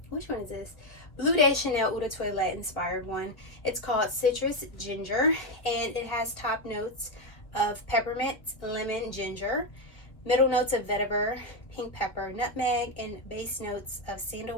which one is this? Bleu de Chanel Eau de Toilette inspired one. It's called Citrus Ginger, and it has top notes of peppermint, lemon, ginger, middle notes of vetiver, pink pepper, nutmeg, and base notes of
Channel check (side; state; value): right; late; 1.7 ms